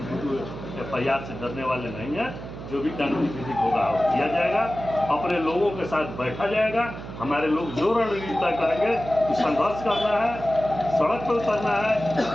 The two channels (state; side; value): noise; right; hum, 11 dB below the sound